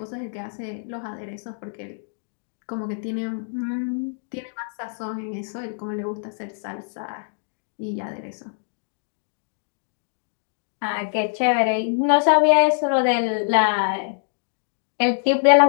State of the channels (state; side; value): silent; right; digital silence